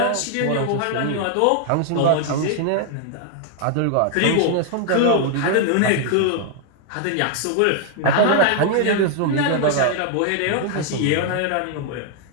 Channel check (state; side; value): different; both; correlation 0.00